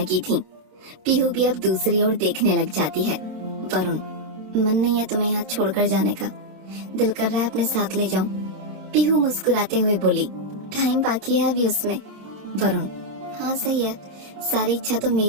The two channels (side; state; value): left; late; 26 ms